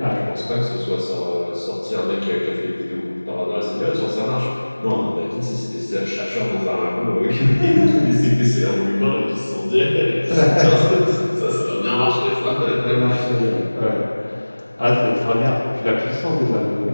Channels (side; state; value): both; inverted; correlation -1.00